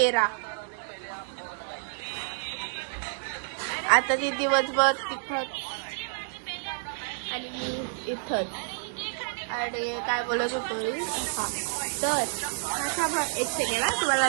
आता ती दिवसभर तिथंच आणि मी इथंच. आणि काय बोलत होतो मी. हा तर एक सेकंड तुम्हाला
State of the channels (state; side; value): silent; left; digital silence